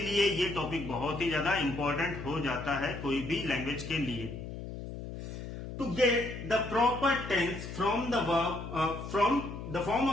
ये टॉपिक बहुत ही ज्यादा इंपॉर्टेंट हो जाता है कोई भी लैंग्वेज के लिए। To get the proper tense from the form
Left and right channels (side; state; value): left; noise; hum, 9 dB below the sound